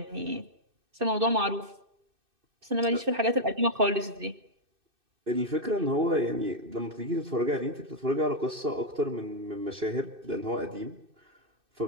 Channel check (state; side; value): late; left; 2.6 ms